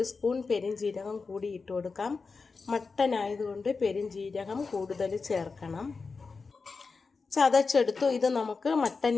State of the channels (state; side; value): quieter; right; 4.5 dB